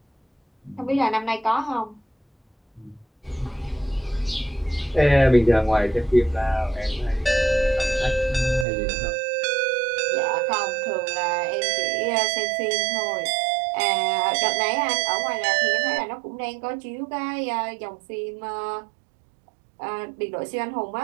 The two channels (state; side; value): drops out; left; at 8.7 s